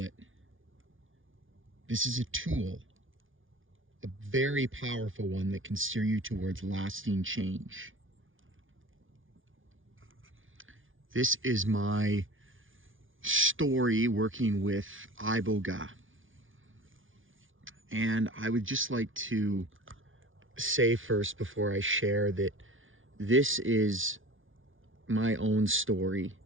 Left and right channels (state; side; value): late; left; 0.57 ms